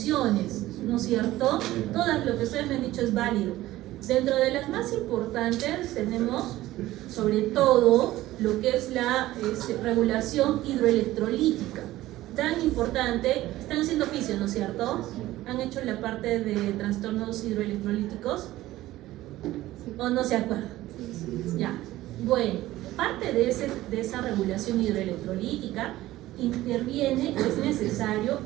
¿no es cierto? Todas lo que ustedes me han dicho es válido. Dentro de las más importantes tenemos sobre todo lo que es la regulación hidroelectrolítica, tan importante. Están haciendo fisio, ¿no es cierto? ¿Han hecho la parte de trastornos hidroelectrolíticos? ¿O no se acuerdan? Ya, bueno, parte de esa regulación hidroelectrolítica interviene, es necesario,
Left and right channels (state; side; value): quieter; left; 16.0 dB